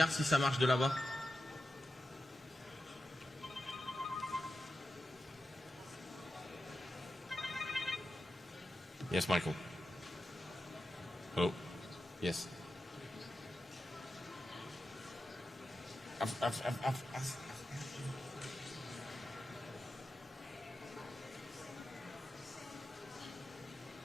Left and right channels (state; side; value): normal; both; correlation 0.90